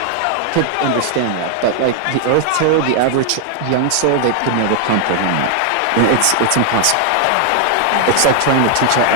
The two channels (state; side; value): different; both; correlation 0.00